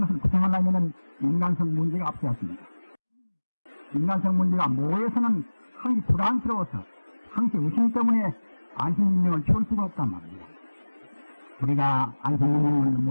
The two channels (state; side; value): inverted; both; correlation -1.00